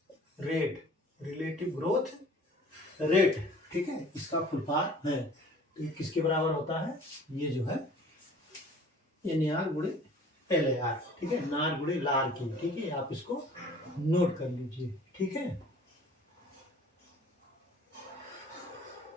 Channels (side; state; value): both; normal; correlation 0.49